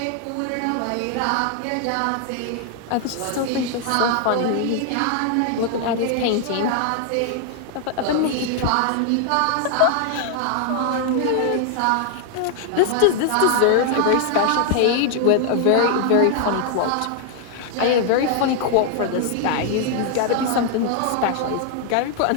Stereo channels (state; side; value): different; both; correlation 0.00